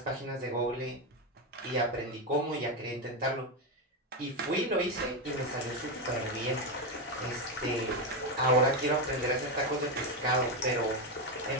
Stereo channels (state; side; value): normal; both; correlation 0.09